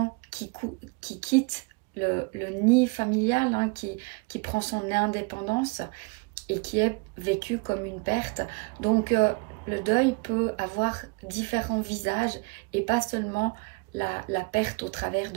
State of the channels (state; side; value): quieter; left; 29.3 dB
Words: qui quitte le nid familial, qui prend son indépendance et qui est vécu comme une perte. Donc le deuil peut avoir différents visages et pas seulement la perte au travers